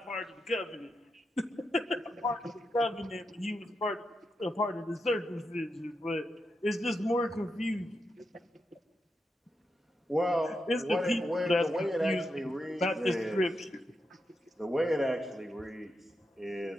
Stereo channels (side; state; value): both; normal; correlation 0.86